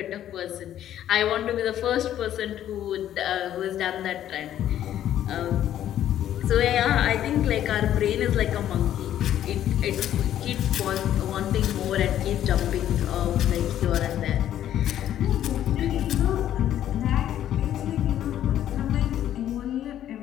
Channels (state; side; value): quieter; right; 11.4 dB